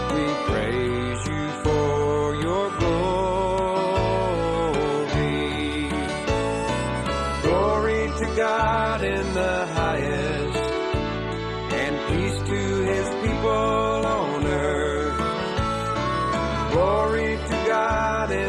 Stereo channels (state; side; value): identical; both; correlation 1.00